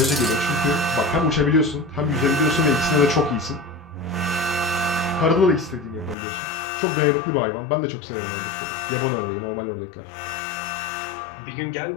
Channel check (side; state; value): right; drops out; at 6.2 s